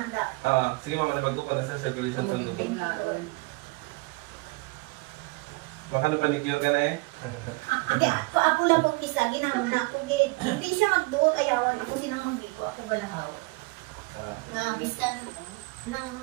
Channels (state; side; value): quieter; left; 26.2 dB